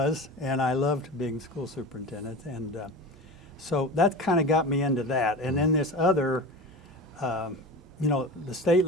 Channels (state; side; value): normal; both; correlation 0.31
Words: And I loved being school superintendent, and so that kind of got me into that. And then this other, the state